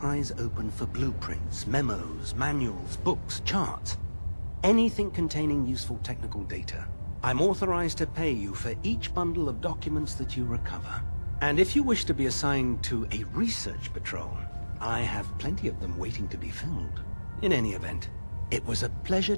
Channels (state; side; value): inverted; both; correlation -1.00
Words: eyes open for blueprints, memos, manuals, books, charts. Anything containing useful technical data. I'm authorized to pay you for each bundle of documents that you recover. And if you wish to be assigned to a research patrol, I have plenty of them waiting to be filled. In any event, it was a pleasure